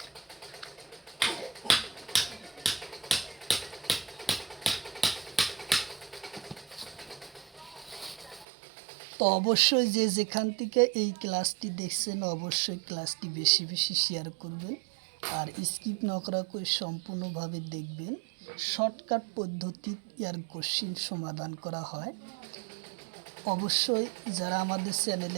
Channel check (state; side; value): drops out; left; at 8.5 s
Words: তো অবশ্যই যে যেখান থেকে এই ক্লাসটি দেখছেন অবশ্যই ক্লাসটি বেশি বেশি শেয়ার করবেন, আর স্কিপ না করা করে সম্পূর্ণভাবে দেখবেন। শর্টকাট পদ্ধতি এর কোশ্চিন সমাধান করা হয়। অবশ্যই যারা আমাদের